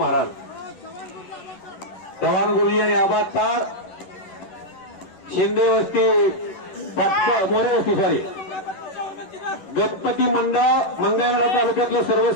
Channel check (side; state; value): right; late; 11 ms